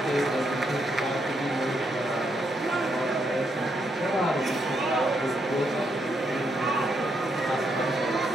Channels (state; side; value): normal; both; correlation 0.78